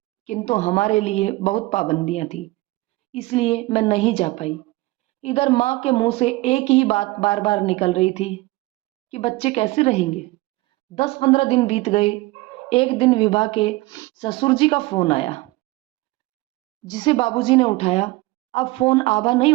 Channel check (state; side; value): quieter; left; 20.6 dB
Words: किंतु हमारे लिए बहुत पाबंदियां थी, इसलिए मैं नहीं जा पाई। इधर माँ के मुंह से एक ही बात बार बार निकल रही थी कि बच्चे कैसे रहेंगे। 10-15 दिन बीत गए। एक दिन विभा के ससुर जी का फोन आया, जिसे बाबूजी ने उठाया। अब फोन आभा नहीं